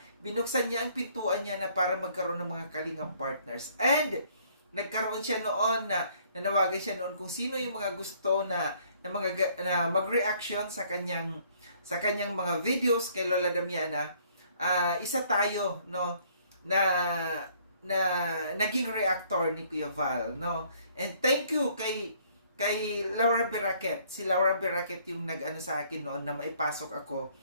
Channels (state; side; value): inverted; both; correlation -0.62